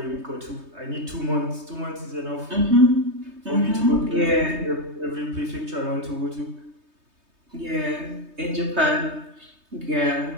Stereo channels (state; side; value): late; left; 3.2 ms